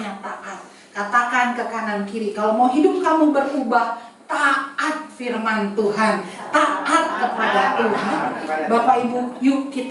taat. Katakan ke kanan kiri, kalau mau hidup kamu berubah, taat firman Tuhan, taat kepada Tuhan. Bapak Ibu, yuk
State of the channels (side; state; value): both; identical; correlation 1.00